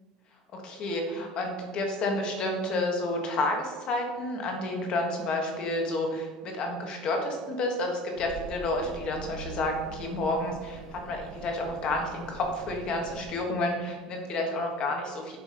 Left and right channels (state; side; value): normal; both; correlation 0.40